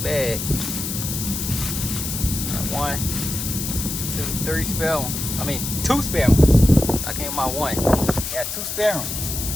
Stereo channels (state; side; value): noise; left; hiss, 4 dB below the sound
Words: 1, 2, 3 spare ones. 2 spare ones. I came my 1. Got 2 spare ones.